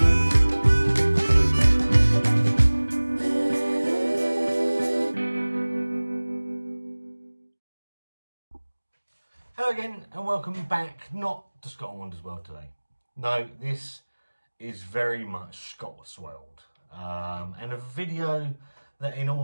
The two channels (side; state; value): both; inverted; correlation -1.00